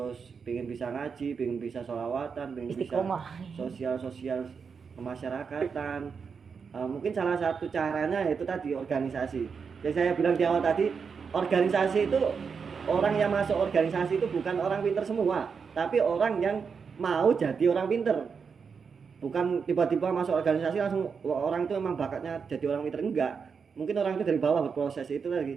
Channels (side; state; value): left; quieter; 5.9 dB